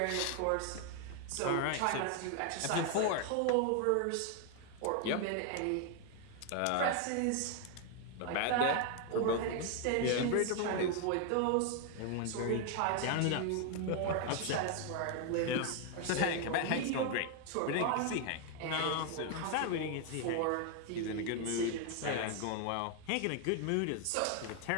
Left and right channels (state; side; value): different; both; correlation 0.01